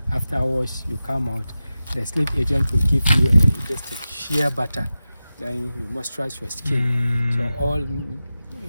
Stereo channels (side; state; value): both; inverted; correlation -0.94